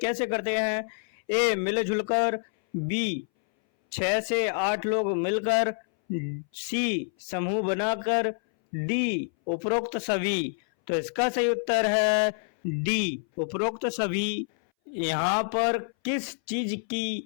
करते हैं? ए मिलजुल कर, बी 6 से 8 लोग मिलकर, सी समूह बनाकर, डी उपरोक्त सभी। तो इसका सही उत्तर है डी उपरोक्त सभी। यहाँ पर किस चीज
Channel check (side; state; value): right; silent; 60 dB below the other